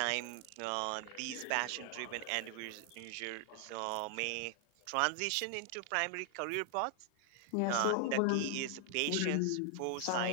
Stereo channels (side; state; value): both; different; correlation 0.00